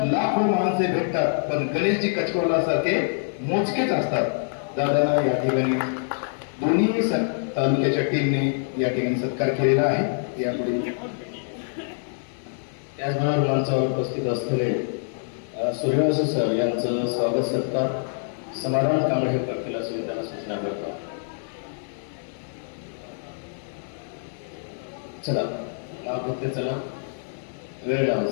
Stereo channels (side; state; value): right; silent; 57 dB below the other